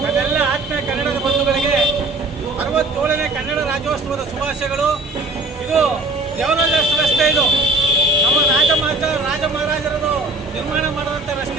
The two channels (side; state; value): left; quieter; 3.0 dB